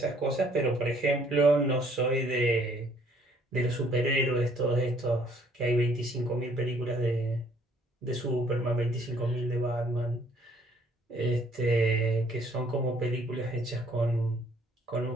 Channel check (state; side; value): normal; both; correlation 0.62